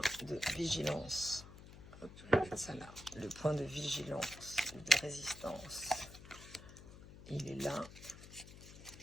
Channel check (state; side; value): noise; left; hum, 16 dB below the sound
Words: de vigilance, hop, je vais mettre ça là, le point de vigilance, de résistance, il est là.